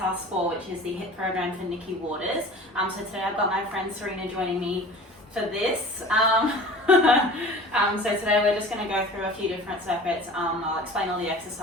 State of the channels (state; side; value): normal; both; correlation 0.41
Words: 4, which is the HIIT program for Nicky Waters. So today I've got my friend Serena joining me for this. So today we're just going to go through a few different circuits. I'll explain all the